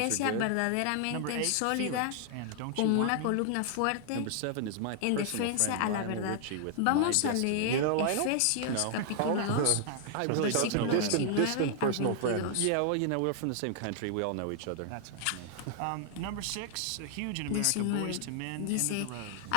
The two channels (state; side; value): different; both; correlation 0.00